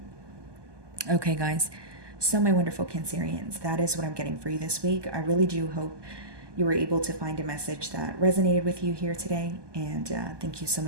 Okay, guys. So, my wonderful Cancerians, that is what I'm getting for you this week. I really do hope you were able to find a message that resonated with you here today. And thank you so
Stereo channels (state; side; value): late; left; 1.2 ms